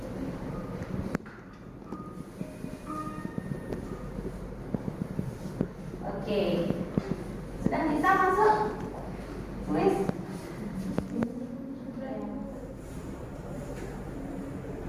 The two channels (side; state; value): both; identical; correlation 1.00